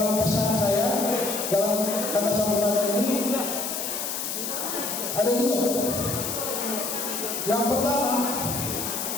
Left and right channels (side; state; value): left; noise; hiss, 3 dB below the sound